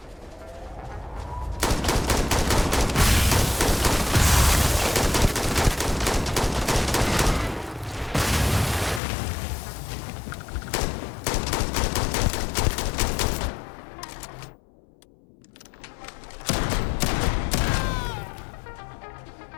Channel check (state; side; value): drops out; right; at 9.0 s